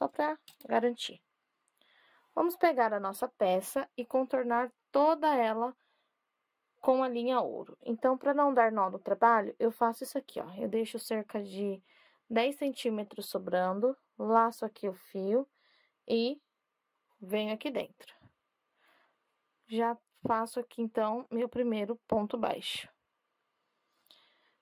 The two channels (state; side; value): identical; both; correlation 1.00